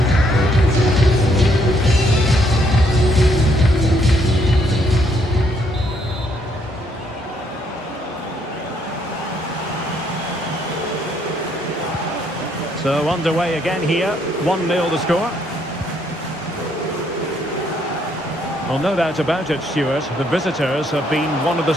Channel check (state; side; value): normal; both; correlation 0.70